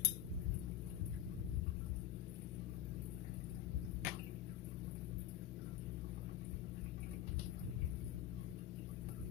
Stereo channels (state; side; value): quieter; right; 11.4 dB